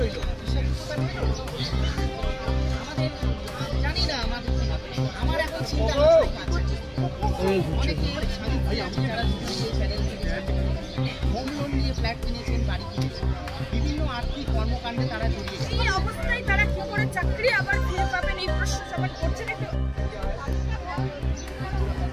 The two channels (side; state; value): both; identical; correlation 1.00